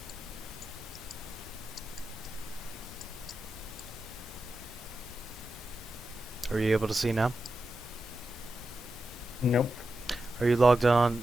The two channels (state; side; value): normal; both; correlation 0.90